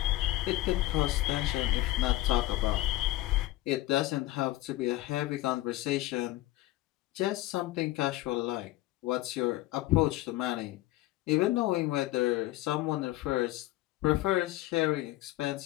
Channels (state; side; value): quieter; right; 17.1 dB